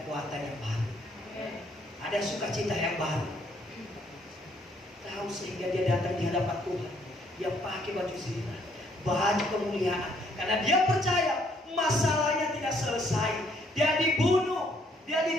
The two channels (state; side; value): normal; both; correlation 0.67